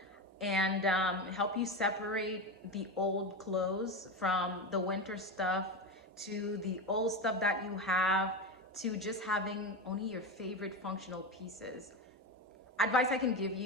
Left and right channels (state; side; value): normal; both; correlation 0.19